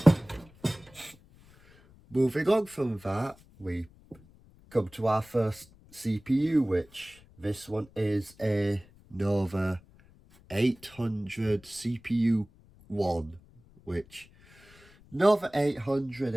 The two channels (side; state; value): left; noise; rumble, 26 dB below the sound